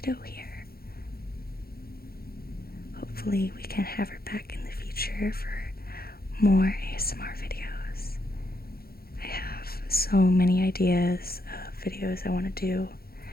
here. Hopefully we can have her back in the future for more ASMR videos. I have so many ideas of videos I want to do.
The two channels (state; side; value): late; right; 0.44 ms